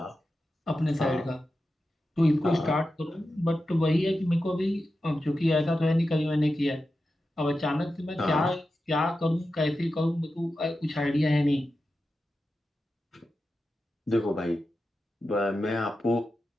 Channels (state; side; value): normal; both; correlation 0.91